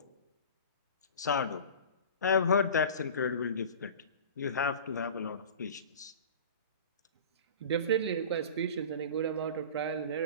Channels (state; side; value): inverted; both; correlation -0.37